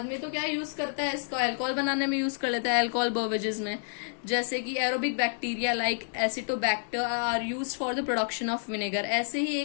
तो क्या यूज करता है, इसको अल्कोहल बनाने में यूज कर लेता है, अल्कोहल बेवरेजेस में, जैसे कि aerobic bacteria like acetobacter are used for the production of vinegar. ऐसे ही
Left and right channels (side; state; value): right; silent; 58 dB below the other